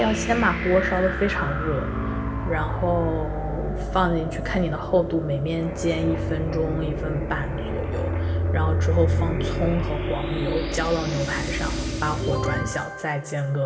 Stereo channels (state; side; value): identical; both; correlation 1.00